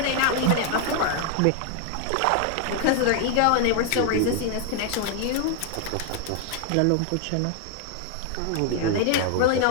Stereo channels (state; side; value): different; both; correlation 0.00